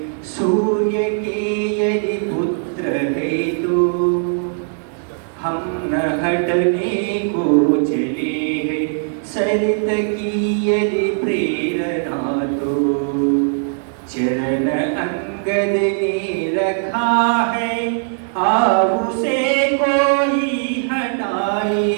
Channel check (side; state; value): left; silent; digital silence